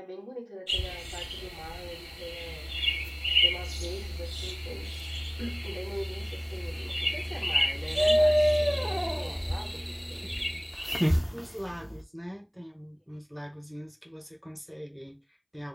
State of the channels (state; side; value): identical; both; correlation 1.00